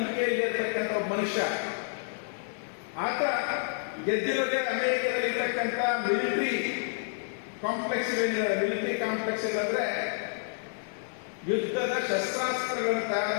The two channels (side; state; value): right; silent; 58 dB below the other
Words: ಇರತಕ್ಕಂಥ ಒಬ್ಬ ಮನುಷ್ಯ. ಆತ ಗೆದ್ದಿರೋದೇ ಅಮೆರಿಕದಲ್ಲಿ ಇರ್ತಕ್ಕಂಥ ಮಿಲಿಟರಿ ಕಾಂಪ್ಲೆಕ್ಸ್ ಅಂದ್ರೆ ಯುದ್ಧದ ಶಸ್ತ್ರಾಸ್ತ್ರಗಳನ್ನು ತಯಾರು